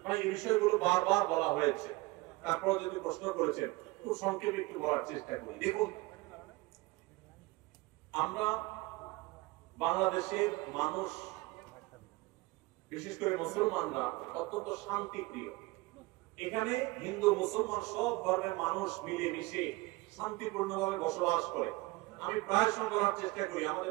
ভাই, এই বিষয়গুলো বারবার বলা হয়েছে, তারপর যদি প্রশ্ন করেছেন খুব সংক্ষেপে একটু বলার চেষ্টা করি। দেখুন, আমরা বাংলাদেশের মানুষ, বিশেষ করে মুসলমানরা অত্যন্ত শান্তিপ্রিয়। এখানে হিন্দু মুসলমান সব ধর্মের মানুষ মিলেমিশে শান্তিপূর্ণভাবে বসবাস করে। আমি প্রায় সময় বলার চেষ্টা করি, আমাদের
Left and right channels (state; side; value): quieter; left; 22.2 dB